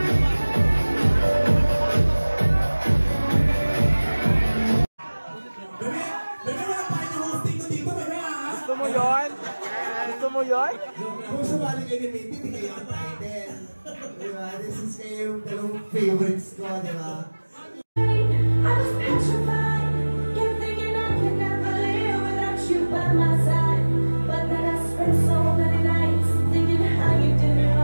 Gusto mo yun? Gusto mo yun? Kung sumali kayo ni Minty, hindi kayo ang title. Diba? This is kayo yung dalawang favorites ko, diba? I was petrified, kept thinking I could never live without you by my side. But then I spent so many nights thinking how you did it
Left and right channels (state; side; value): inverted; both; correlation -1.00